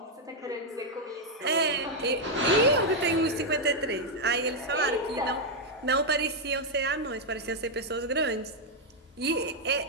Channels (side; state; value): both; normal; correlation -0.01